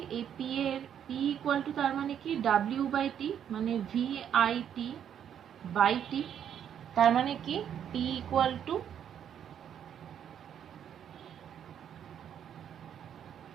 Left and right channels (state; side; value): quieter; left; 9.1 dB